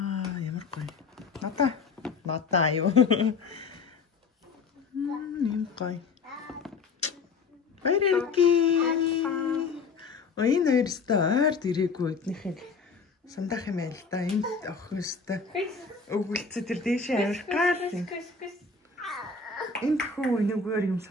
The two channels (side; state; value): right; quieter; 4.8 dB